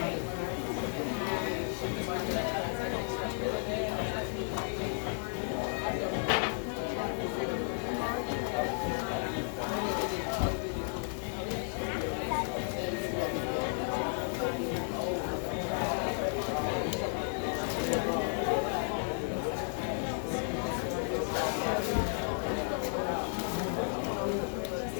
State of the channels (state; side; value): silent; right; 55 dB below the other